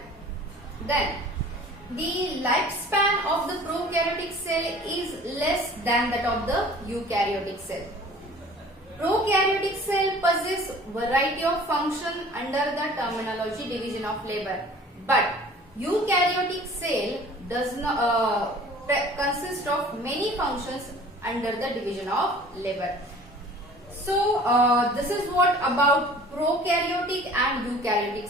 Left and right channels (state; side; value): normal; both; correlation 0.48